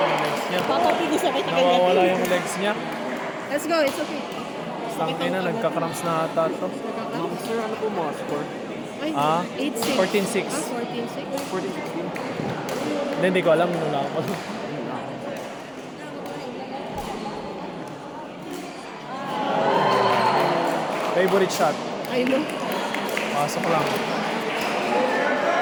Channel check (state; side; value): identical; both; correlation 1.00